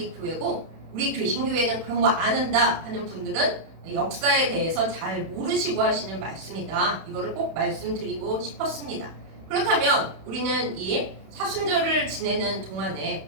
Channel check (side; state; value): left; late; 31 ms